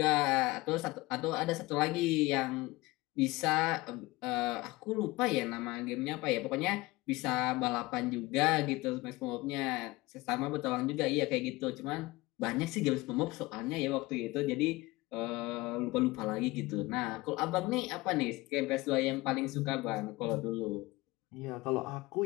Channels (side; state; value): right; quieter; 21.3 dB